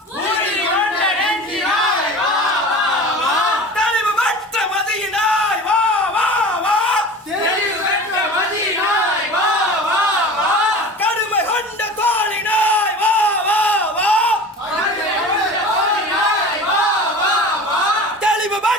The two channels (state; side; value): normal; both; correlation 0.37